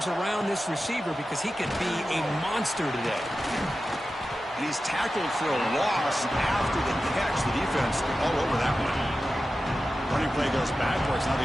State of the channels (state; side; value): normal; both; correlation 0.93